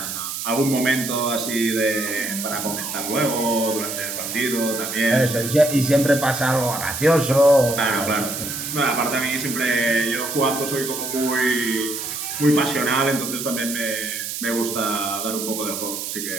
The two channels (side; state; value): right; noise; hiss, 5 dB below the sound